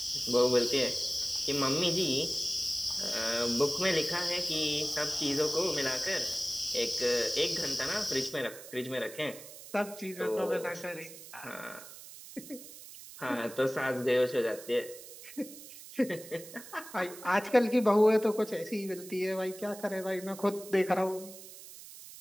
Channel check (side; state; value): right; noise; hiss, 15 dB below the sound